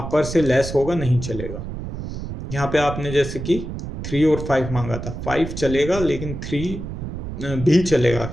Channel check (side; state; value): right; noise; rumble, 7 dB below the sound